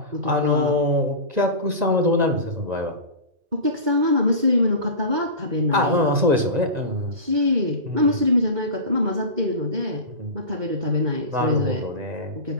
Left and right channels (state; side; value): late; left; 1.9 ms